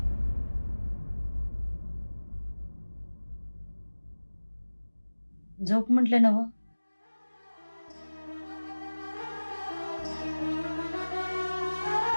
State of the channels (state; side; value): inverted; both; correlation -1.00